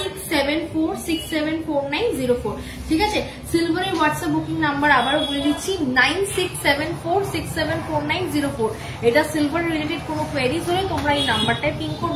ঠিক আছে, সিলভারের হোয়াটসঅ্যাপ বুকিং নাম্বার আবারও বলে দিচ্ছি 9674674904। এটা সিলভার রিলেটেড কোনো কোয়েরিজ হলে তোমরা এই নাম্বারটায় পিন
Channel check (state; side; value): identical; both; correlation 1.00